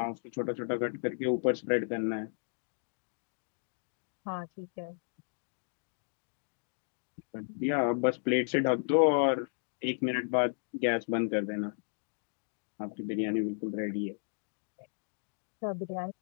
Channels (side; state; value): right; silent; digital silence